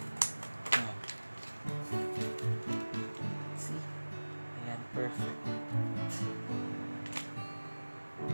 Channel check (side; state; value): both; inverted; correlation -1.00